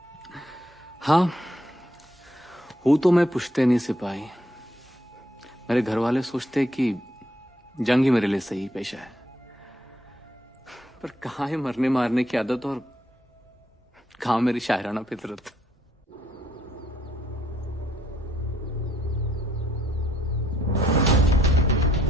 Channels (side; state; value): both; normal; correlation 0.71